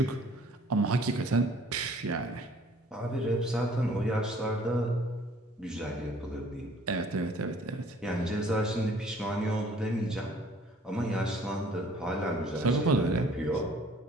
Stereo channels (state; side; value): normal; both; correlation 0.55